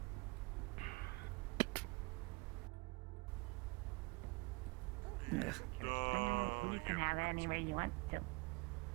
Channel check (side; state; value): left; quieter; 26.6 dB